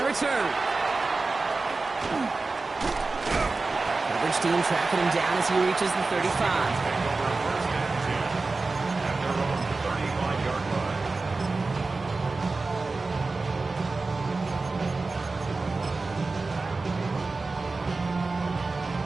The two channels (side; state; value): left; quieter; 3.7 dB